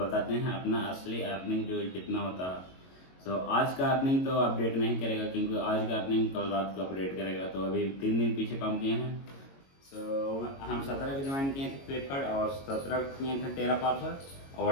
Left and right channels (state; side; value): late; right; 22 ms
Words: हैं अपना असली अर्निंग जो कितना होता है। तो आज का अर्निंग तो अपडेट नहीं करेगा, क्योंकि आज का अर्निंग कल रात को अपडेट करेगा। तो अभी 3 दिन पीछे काम किए हैं। तो हम 17 को ज्वाइन किए थे फ्लिपकार्ट, और 17 को किए थे 13 पार्सल,